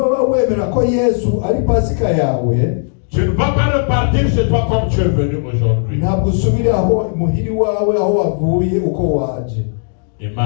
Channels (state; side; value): silent; right; digital silence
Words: wemera ko Yesu ari pasika yawe, tu ne vas pas repartir chez toi comme tu es venu aujourd'hui. ntabwo usubira aho muhiri wawe aho wavuye uko waje.